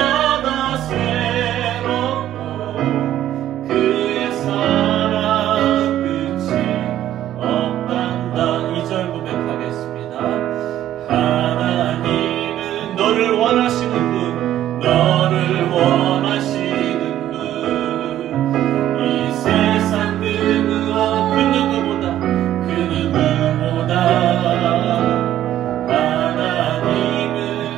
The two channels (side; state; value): left; quieter; 12.3 dB